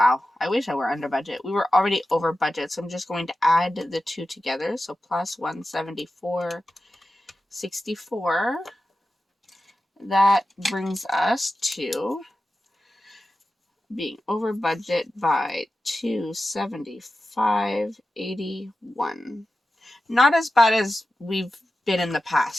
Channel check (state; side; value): normal; both; correlation 0.93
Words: I wish I were under budget. We were already over budget, so I'm just going to add the two together. So plus 174.64. That brings us to being over budget by 275.81. Not as bad as we've been in the